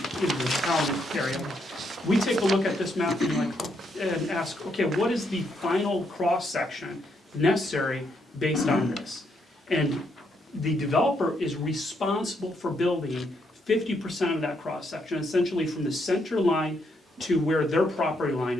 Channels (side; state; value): both; normal; correlation 0.76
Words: in the town area. We take a look at this map and ask, okay, what is the final cross section necessary based on this? And the developer is responsible for building 50% of that cross section, essentially from the center line to where their property line